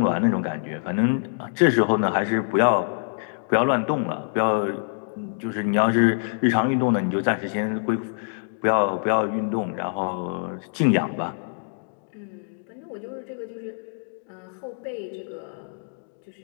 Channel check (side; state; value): right; silent; digital silence